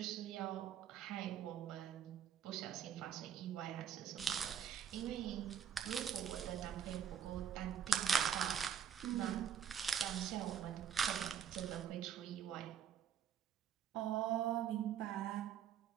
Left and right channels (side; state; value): left; quieter; 8.5 dB